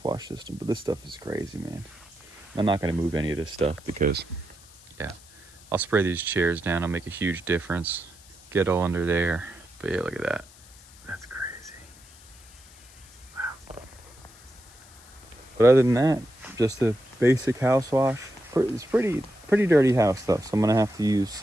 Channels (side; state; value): left; noise; hiss, 23 dB below the sound